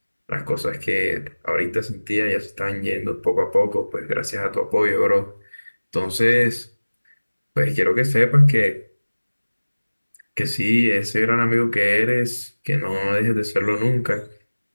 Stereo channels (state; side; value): inverted; both; correlation -1.00